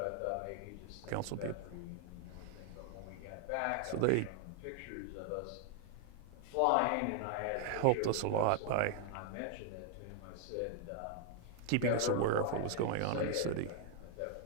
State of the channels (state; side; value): different; both; correlation 0.00